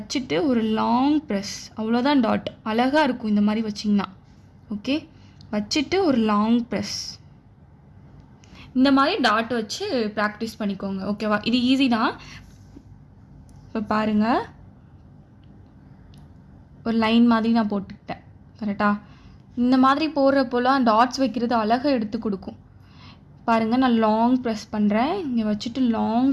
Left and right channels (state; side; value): identical; both; correlation 1.00